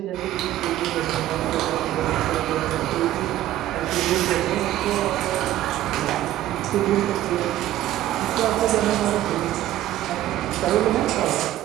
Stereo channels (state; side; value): quieter; left; 13.7 dB